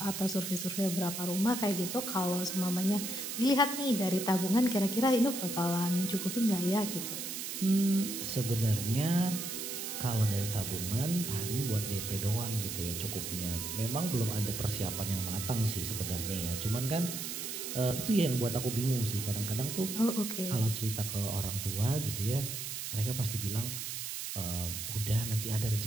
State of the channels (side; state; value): right; noise; hiss, 5 dB below the sound